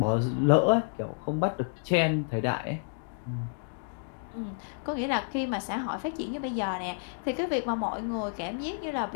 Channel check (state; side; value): silent; right; digital silence